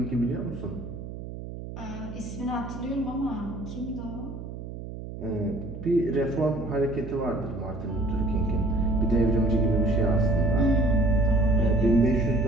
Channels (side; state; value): right; noise; hum, 10 dB below the sound